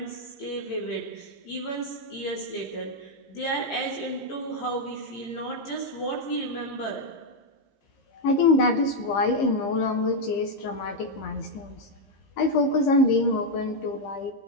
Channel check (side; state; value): right; late; 15 ms